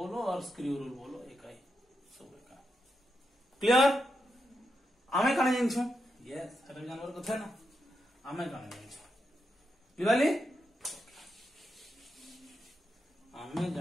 और स्क्रू रूल बोलो, एक ही सब का। क्लियर? आमे काने जानिछु? यस, हर जानवर को थे ना, आमे काने जानिछु दिवाली आमे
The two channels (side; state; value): both; normal; correlation 0.85